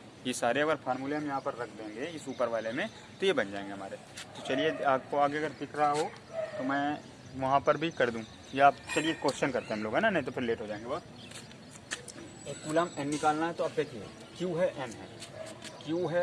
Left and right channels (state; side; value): identical; both; correlation 1.00